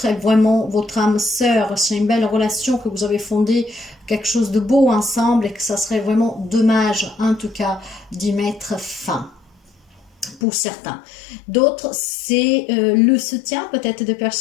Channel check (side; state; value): right; drops out; at 10.4 s